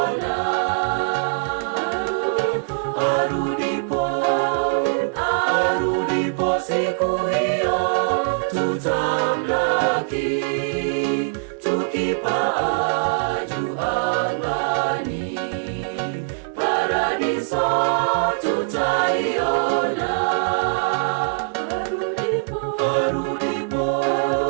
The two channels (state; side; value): silent; left; digital silence